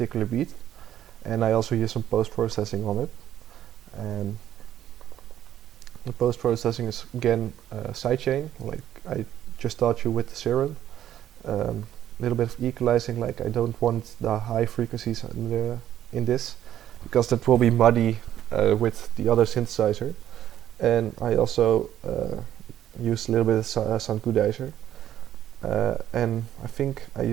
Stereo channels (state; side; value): quieter; left; 11.4 dB